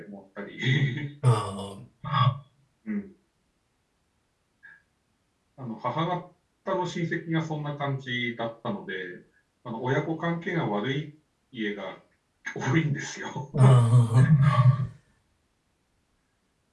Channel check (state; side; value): identical; both; correlation 1.00